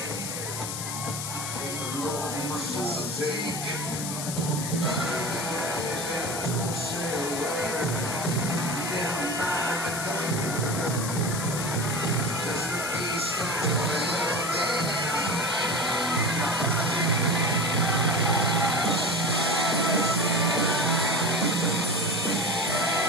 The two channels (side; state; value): left; noise; hiss, 5 dB below the sound